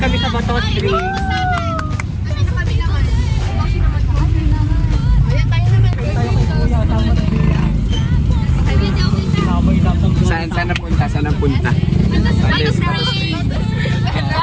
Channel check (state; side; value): identical; both; correlation 1.00